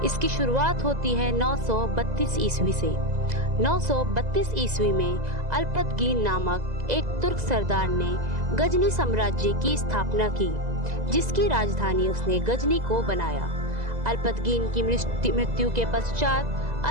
इसकी शुरुआत होती है 932 ईस्वी से। 932 ईस्वी में अल्पतगीन नामक एक तुर्क सरदार ने गजनी साम्राज्य की स्थापना की, जिसकी राजधानी उसने गजनी को बनाया। अल्पतगीन की मृत्यु के पश्चात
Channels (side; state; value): left; late; 2.0 ms